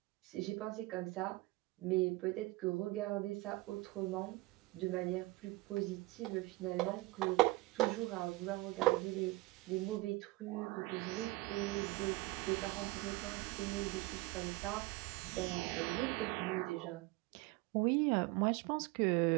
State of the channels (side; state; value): left; quieter; 21.5 dB